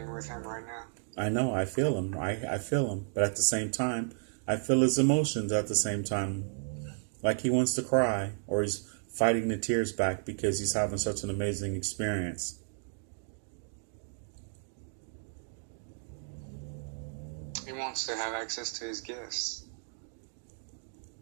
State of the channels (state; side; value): silent; left; digital silence